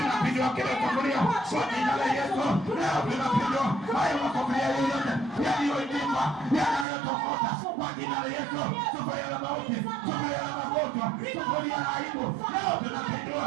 kila sufuria kwa jina la Yesu. Leo tunapindua hayo makombia yote yaliyoinuka, yanayotokota kwa jina la Yesu. Sufuria la mauti, sufuria la magonjwa, sufuria la aibu. Leo tunapindua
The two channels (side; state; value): left; drops out; at 6.9 s